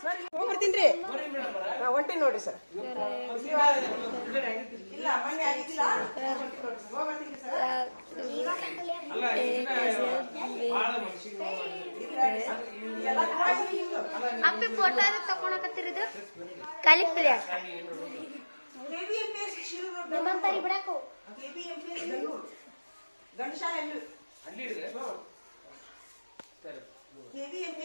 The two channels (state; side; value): inverted; both; correlation -1.00